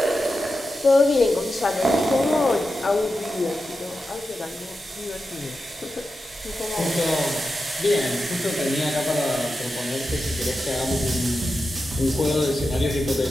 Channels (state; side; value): normal; both; correlation 0.90